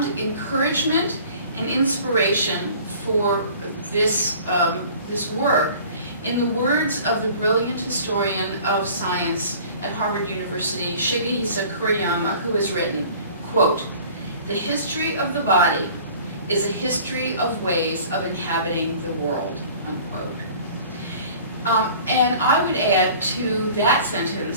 encouragement and inspiration for this work in the words of the brilliant historian of science at Harvard University, Shigehisa Kuriyama, who has written, quote, "The history of the body is a history of ways of inhabiting the world," unquote. And I would add to that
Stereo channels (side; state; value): both; inverted; correlation -0.47